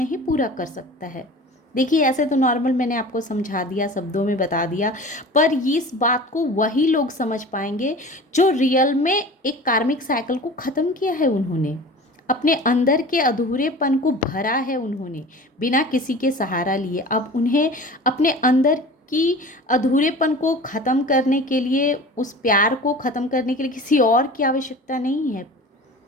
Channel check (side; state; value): both; normal; correlation 0.38